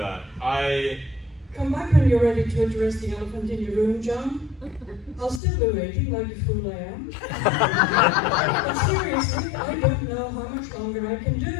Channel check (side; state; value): right; drops out; at 5.4 s